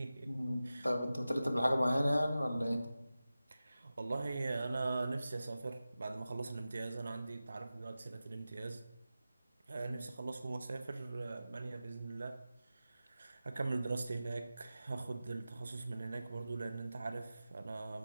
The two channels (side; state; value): both; inverted; correlation -0.94